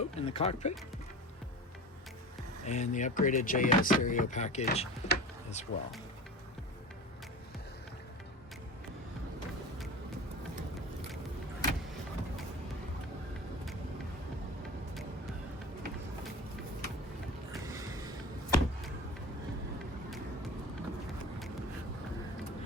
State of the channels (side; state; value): both; normal; correlation 0.33